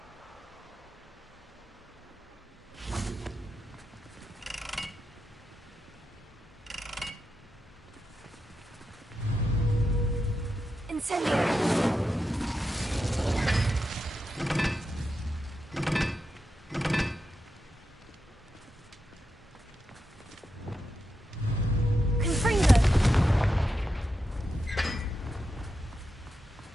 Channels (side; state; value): both; normal; correlation 0.87